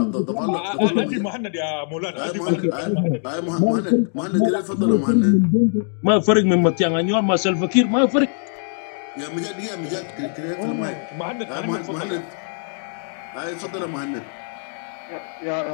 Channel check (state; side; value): silent; right; 55 dB below the other